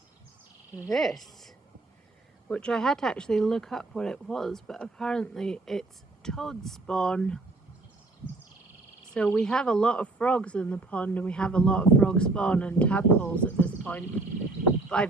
this, which I had to actually look up what it was, but apparently it's toad spawn. So we have a lot of frogs in the pond, and we have a lot of frog spawn and tadpoles at this point, but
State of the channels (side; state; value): left; quieter; 3.2 dB